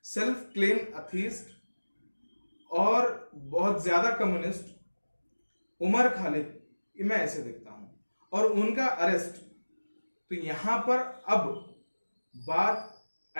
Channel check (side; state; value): both; inverted; correlation -1.00